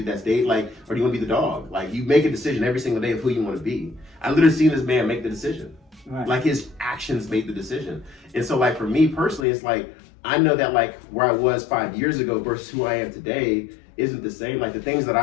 that's dating, like, or do you want to be the dog? Like, you make a decision every single day of who you want to be. I literally seen this man make the decision. Right. Like, his actions made the decision. And so, like, for me personally, it's like, I know that, like, where I was 5 years ago versus who I am today isn't the same. Like, the things that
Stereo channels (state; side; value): drops out; right; at 9.5 s